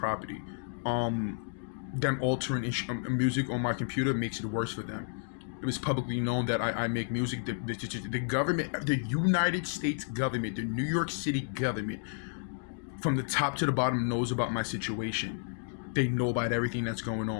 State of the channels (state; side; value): silent; right; digital silence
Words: Them altering music on my computer makes it worse for them. It was publicly known that I make music. The government, the United States government, the New York City government, from the top to the bottom, knows about my situation. They know about everything that's going